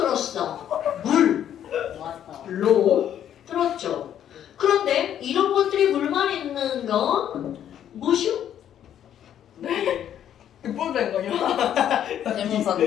왔어. 물로 들었죠. 그런데 이런 것들이 물만 있는 건 무엇이요? 뽀된 거요? 태무산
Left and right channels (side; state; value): right; quieter; 10.2 dB